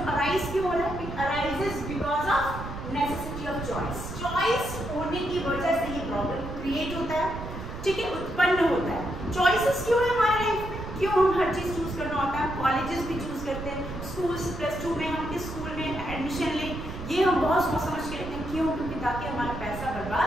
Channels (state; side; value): noise; right; rumble, 9 dB below the sound